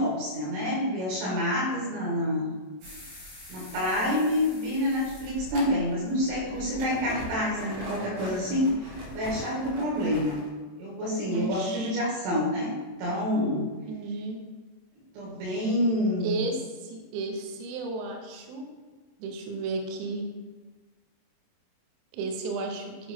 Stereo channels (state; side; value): late; left; 27 ms